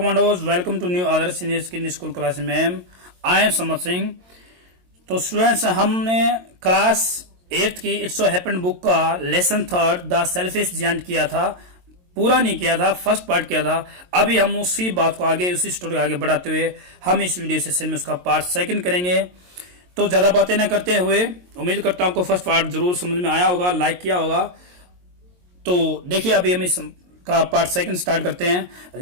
welcome to new other senior skin school class ma'am. I am Samar Singh. तो students, हमने class 8th की it's so happened book का lesson 3 the selfish giant किया था, पूरा नहीं किया था, फर्स्ट पार्ट किया था। अभी हम उसी बात को आगे, उसी स्टोरी को आगे बढ़ाते हुए हम इस वीडियो सेशन में उसका पार्ट 2 करेंगे। तो ज्यादा बातें न करते हुए उम्मीद करता हूं आपको फर्स्ट पार्ट जरूर समझ में आया होगा, लाइक किया होगा। तो देखिए अभी हम इस का पार्ट 2 स्टार्ट करते हैं।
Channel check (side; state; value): left; late; 22 ms